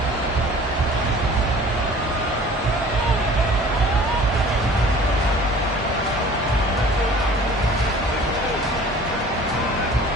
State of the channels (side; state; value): both; normal; correlation 0.47